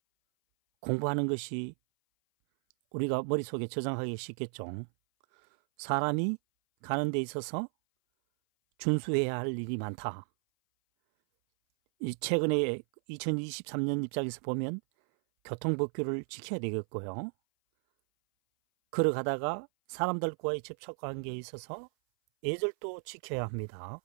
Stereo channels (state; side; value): silent; left; 55 dB below the other